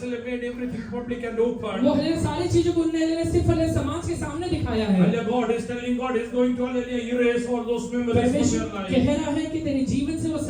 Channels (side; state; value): both; identical; correlation 1.00